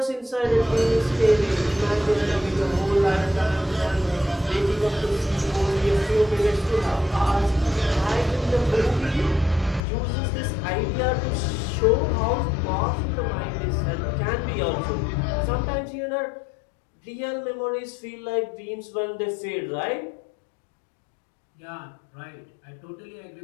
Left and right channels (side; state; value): right; drops out; at 9.8 s